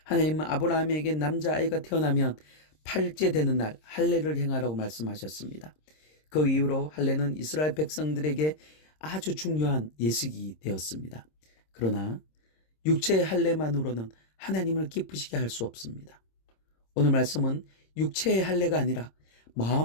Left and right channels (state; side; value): late; right; 26 ms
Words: 하나님은 아브라함에게 남자아이가 태어나면 8째 되는 날 할례를 행하라고 말씀하셨습니다. 그 이후로 할례는 이스라엘 백성들에게 아주 중요한 예식이 되었습니다. 그러나 육체의 할례만으로는 하나님을 기쁘시게 할 수 없습니다. 오늘 말씀은 육체의 할례가 아니라